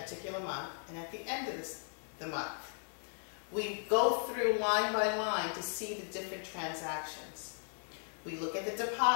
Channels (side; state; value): right; silent; 53 dB below the other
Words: month and at the end of the month. We go through line by line to see the different transactions. We look at the